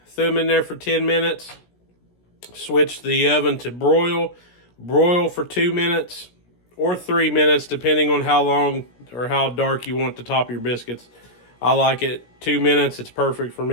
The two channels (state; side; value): late; right; 17 ms